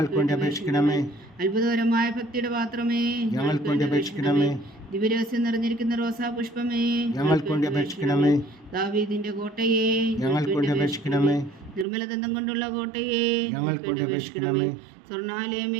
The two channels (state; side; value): drops out; left; at 11.9 s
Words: വേണ്ടി അപേക്ഷിക്കണമേ. അത്ഭുതകരമായ ഭക്തിയുടെ പാത്രമേ, ഞങ്ങൾക്ക് വേണ്ടി അപേക്ഷിക്കണമേ. ദിവ്യരഹസ്യം നിറഞ്ഞിരിക്കുന്ന റോസാ പുഷ്പമേ, ഞങ്ങൾക്ക് വേണ്ടി അപേക്ഷിക്കണമേ. ദാവീദിന്റെ കോട്ടയെ, ഞങ്ങൾക്ക് വേണ്ടി അപേക്ഷിക്കണമേ. നിർമ്മലദന്തം കൊണ്ടുള്ള കോട്ടയെ ഞങ്ങൾക്ക് വേണ്ടി അപേക്ഷിക്കണമേ.